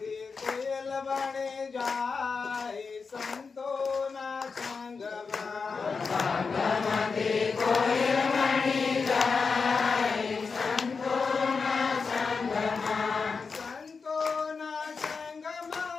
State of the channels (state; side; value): quieter; right; 5.0 dB